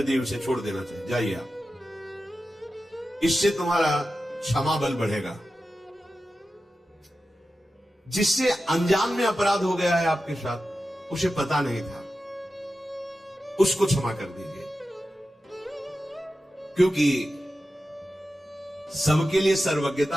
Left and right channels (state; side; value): normal; both; correlation 0.92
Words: दिए उसे छोड़ देना चाहिए। जाइए आप, इससे तुम्हारा क्षमा बल बढ़ेगा। जिससे अनजान में अपराध हो गया है आपके साथ, उसे पता नहीं था, उसको क्षमा कर दीजिए। क्योंकि सबके लिए